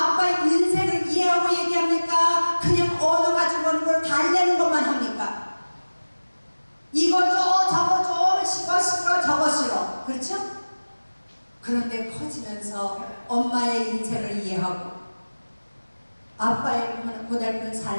아빠의 인생을 이해하고 얘기합니까? 그냥 언어 가지고 오는 걸 달래는 것만 합니까? 이거 줘 저거 줘 이거 싫어 저거 싫어. 그렇죠? 그런데 커지면서 엄마의 인생을 이해하고 아빠의 고달픈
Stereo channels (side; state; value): both; inverted; correlation -1.00